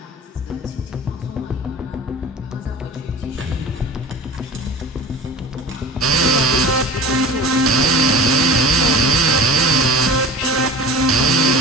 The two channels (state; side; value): normal; both; correlation 0.39